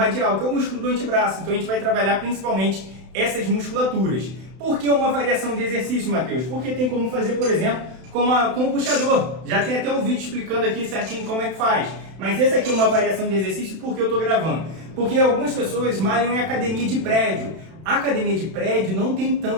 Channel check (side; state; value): left; late; 31 ms